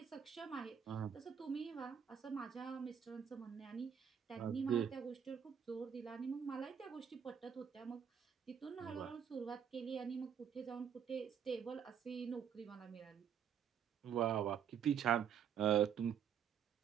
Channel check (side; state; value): left; quieter; 8.1 dB